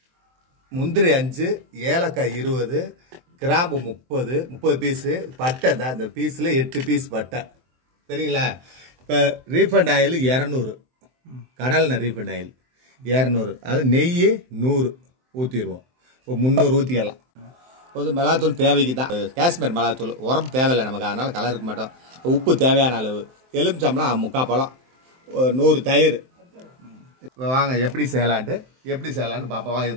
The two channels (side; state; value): left; late; 23 ms